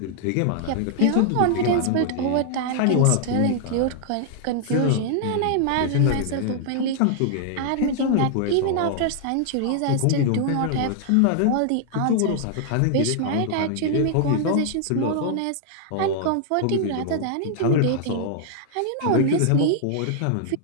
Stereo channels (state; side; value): different; both; correlation -0.01